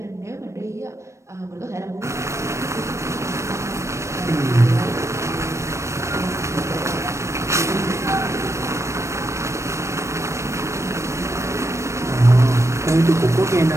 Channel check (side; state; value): left; late; 0.14 ms